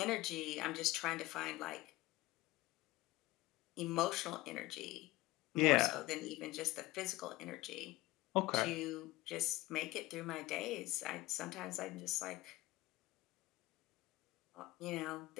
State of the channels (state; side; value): quieter; right; 19.0 dB